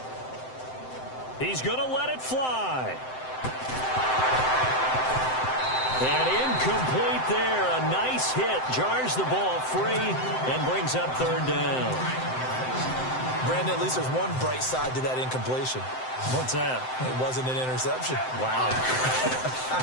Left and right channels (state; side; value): late; right; 7.8 ms